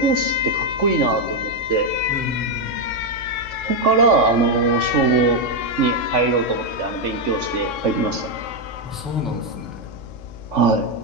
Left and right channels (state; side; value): noise; left; hum, 19 dB below the sound